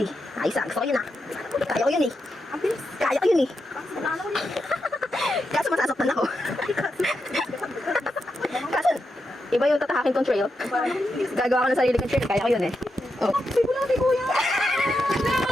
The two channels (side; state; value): both; normal; correlation 0.86